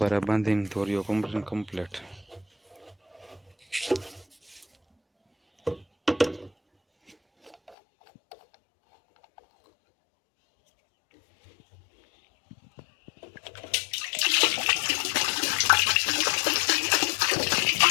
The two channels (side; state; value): right; drops out; at 7.8 s